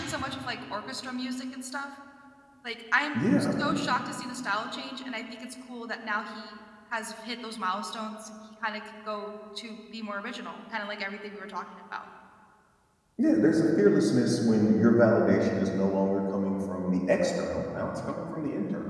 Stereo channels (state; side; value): identical; both; correlation 1.00